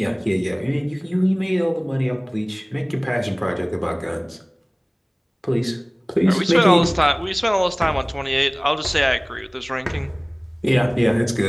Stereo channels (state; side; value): identical; both; correlation 1.00